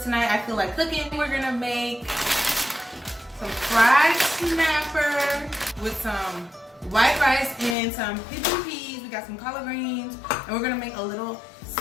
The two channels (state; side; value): drops out; right; at 7.8 s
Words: tonight I feel like cooking. We're gonna make some fried snapper with some white rice and some pigeon peas. We got some collard greens, and we're gonna make a little